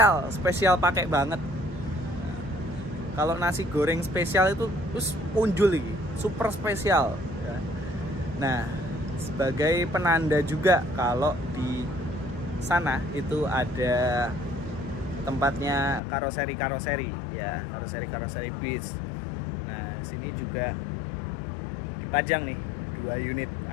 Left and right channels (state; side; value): drops out; right; at 16.0 s